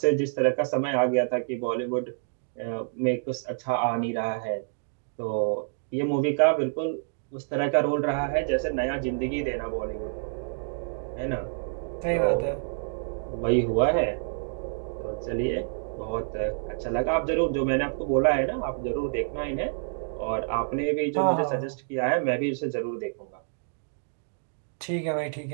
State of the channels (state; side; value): silent; left; digital silence